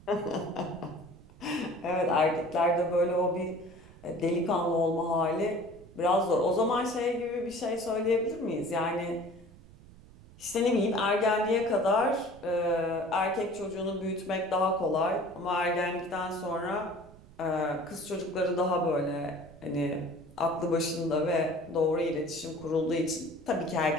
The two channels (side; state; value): right; noise; rumble, 21 dB below the sound